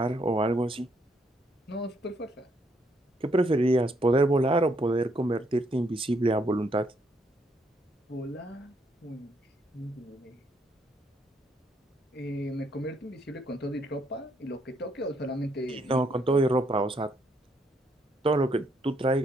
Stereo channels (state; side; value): normal; both; correlation 0.72